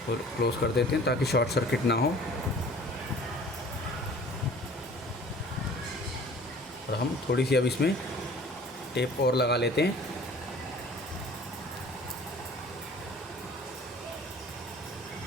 क्लोज़ कर देते हैं ताकि शॉर्ट सर्किट ना हो। और हम थोड़ी सी अब इसमें टेप और लगा लेते हैं।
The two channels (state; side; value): normal; both; correlation 0.48